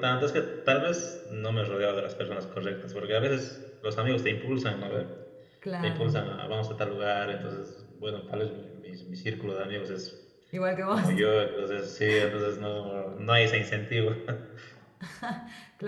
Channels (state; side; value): identical; both; correlation 1.00